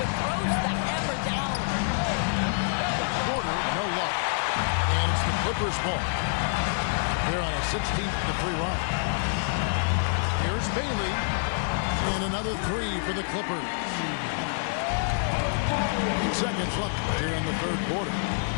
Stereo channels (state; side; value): silent; right; digital silence